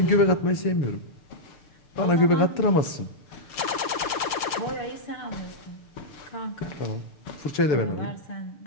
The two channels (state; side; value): late; right; 6.7 ms